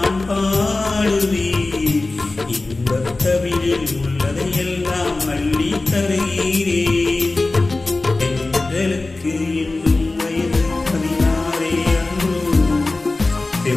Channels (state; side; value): quieter; right; 3.2 dB